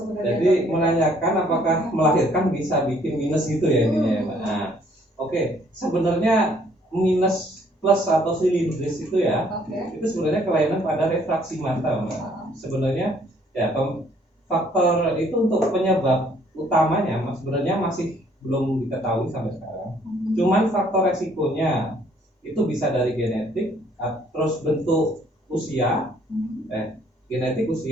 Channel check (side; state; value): both; normal; correlation 0.63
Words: Jadi menanyakan apakah melahirkan bisa bikin minus gitu ya intinya ya, Mbak. Nah, oke. Sebenarnya minus plus atau silindris itu ya, itu sebenarnya kelainan pada refraksi mata, Mbak. Sebenarnya ya faktor itu untuk penyebab utamanya sebenarnya masih belum diketahui sampai sekarang. Cuman faktor resikonya itu bisa dari genetik, terus bentuk usia, genetik